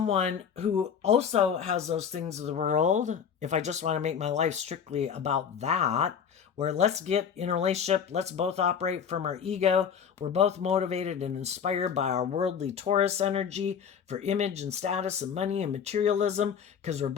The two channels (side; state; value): right; quieter; 7.4 dB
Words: who also has those things of the world, if I just want to make my life strictly about that, where let's get in a relationship, let's both operate from our ego, we're both motivated and inspired by our worldly Taurus energy for image and status and money and materialism, because we're